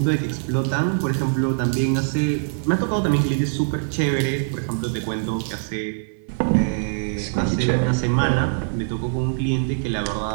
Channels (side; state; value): left; silent; 58 dB below the other